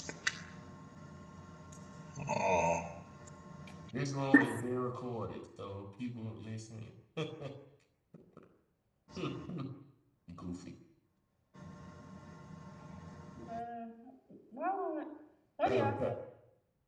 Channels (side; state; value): both; identical; correlation 1.00